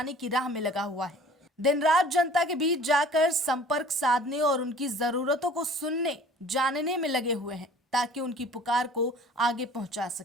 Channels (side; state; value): both; normal; correlation 0.48